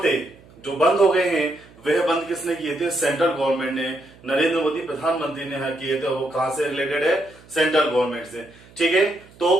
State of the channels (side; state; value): right; noise; hum, 25 dB below the sound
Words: थे जो बंद हो गए हैं, वह बंद किसने किए थे? सेंट्रल गवर्नमेंट ने। नरेंद्र मोदी प्रधानमंत्री ने किए थे। वो कहां से रिलेटेड है? सेंट्रल गवर्नमेंट से। ठीक है, तो